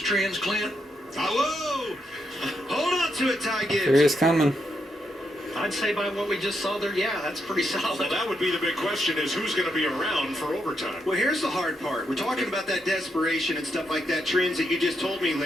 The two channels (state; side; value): normal; both; correlation 0.81